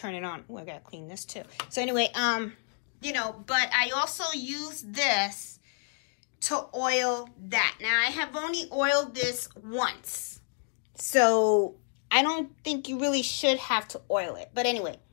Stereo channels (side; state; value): right; silent; 58 dB below the other